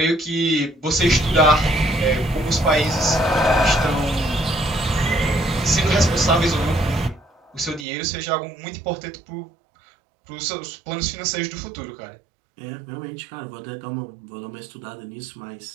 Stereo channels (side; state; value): left; drops out; at 7.9 s